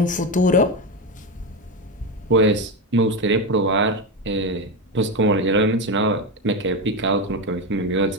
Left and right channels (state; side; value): normal; both; correlation 0.14